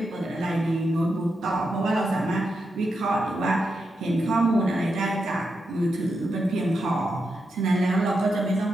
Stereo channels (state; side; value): normal; both; correlation 0.86